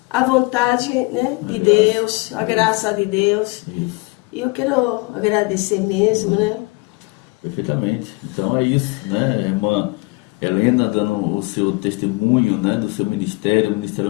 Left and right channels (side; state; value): right; quieter; 26.8 dB